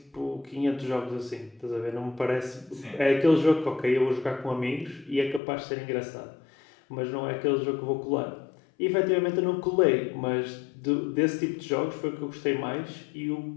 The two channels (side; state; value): right; drops out; at 5.4 s